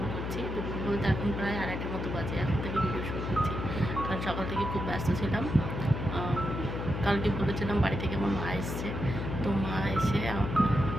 করছি। দুপুর বলতে এখন প্রায় 2:30টার মতো বাজে। এখন থেকে ভিডিও শুরু করছি, কারণ সকাল থেকে খুব ব্যস্ত ছিলাম। কালকে বলেছিলাম বাড়ি থেকে আমার মা এসছে, তো মা এসে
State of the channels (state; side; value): noise; left; hum, 4 dB below the sound